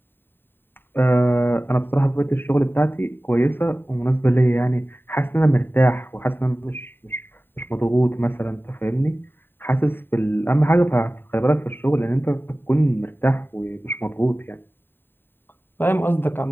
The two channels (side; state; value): right; late; 0.098 ms